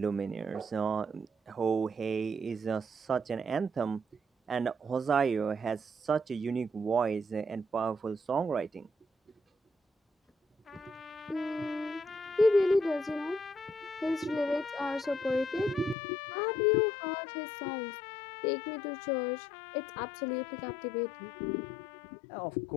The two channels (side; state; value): right; drops out; at 16.0 s